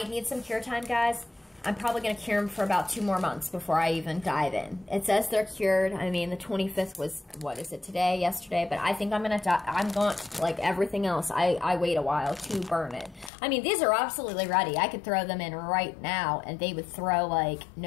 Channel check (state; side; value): drops out; right; at 13.3 s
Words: need some cure time, guys. I'm probably going to cure them for about 2 more months before I even dive in. It says they're cured. I mean, the 25th was, what is it, today, yesterday? But I think I'm going to, like everything else, I wait a while to burn it. I mean, these are absolutely ready. I could throw them in right now, and they would throw like